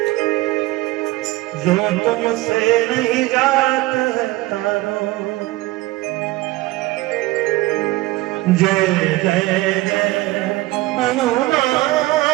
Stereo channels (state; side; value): quieter; left; 18.8 dB